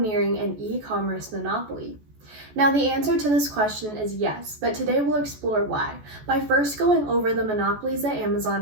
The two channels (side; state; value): left; late; 14 ms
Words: an e-commerce monopoly? Now the answer to this question is yes, but today we'll explore why, by first going over the monopolies that